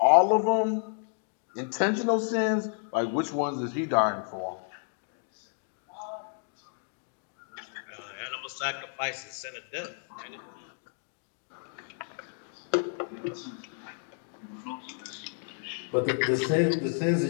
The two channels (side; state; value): right; silent; 56 dB below the other